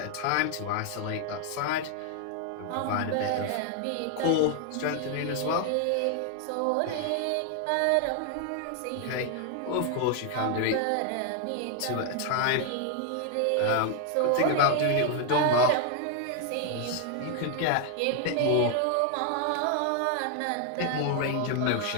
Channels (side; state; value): both; different; correlation 0.00